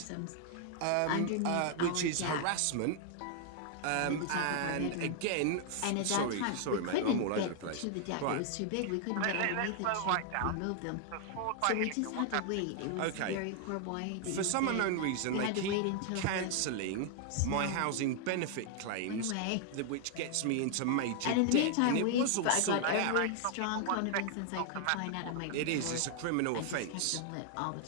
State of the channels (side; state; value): both; different; correlation 0.00